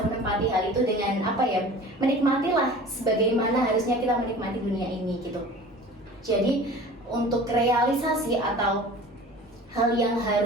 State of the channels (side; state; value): both; normal; correlation 0.41